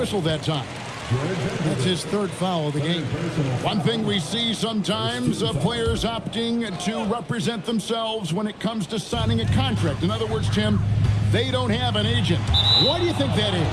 that time. That's his third foul of the game. One thing we see sometimes, players opting to represent themselves when it comes to signing a contract. In other words, Tim, they don't have an agent. Why do you think that is?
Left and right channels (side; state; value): both; identical; correlation 1.00